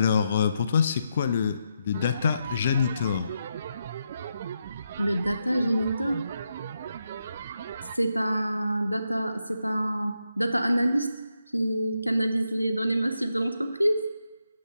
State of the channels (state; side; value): inverted; both; correlation -0.83